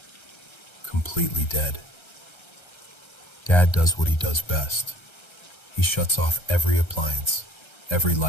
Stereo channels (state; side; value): late; right; 1.3 ms